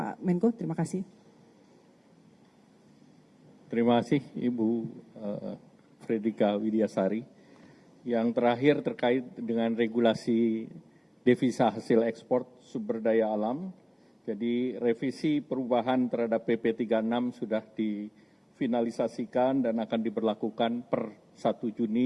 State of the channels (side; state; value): both; identical; correlation 1.00